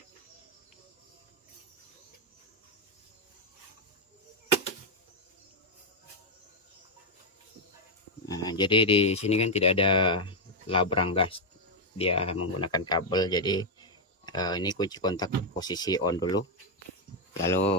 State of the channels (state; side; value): normal; both; correlation 0.01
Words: Nah, jadi di sini kan tidak ada labrang gas, dia menggunakan kabel. Jadi ini kunci kontak posisi on dulu,